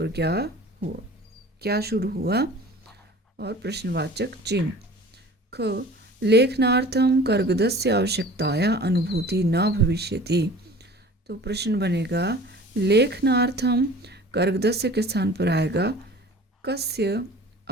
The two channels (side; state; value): both; normal; correlation 0.44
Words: क्या हुआ, क्या शुरू हुआ, और प्रश्नवाचक चिन्ह। ख लेखनार्थम कर्गदस्य आवश्यकताया अनुभूति न भविष्यति। तो प्रश्न बनेगा लेखनार्थम कर्गदस्य के स्थान पर आएगा कस्य